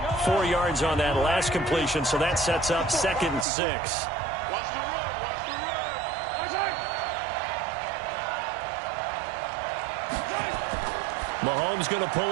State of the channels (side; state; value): left; drops out; at 3.5 s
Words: 4 yards on that last completion, so that sets up 2nd and 6. Mahomes going to